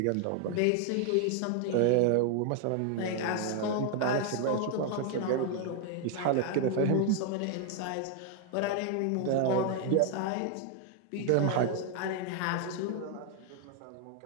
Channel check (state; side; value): different; both; correlation 0.00